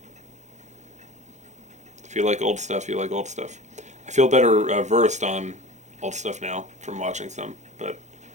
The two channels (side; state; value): left; late; 0.34 ms